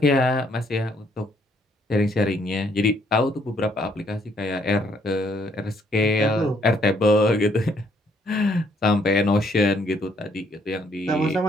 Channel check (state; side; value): normal; both; correlation 0.68